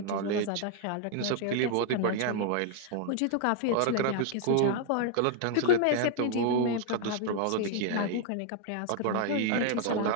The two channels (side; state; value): both; different; correlation 0.00